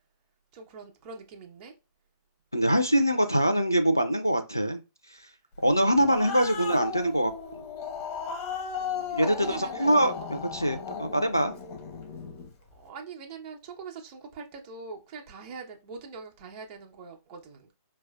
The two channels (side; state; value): both; inverted; correlation -0.82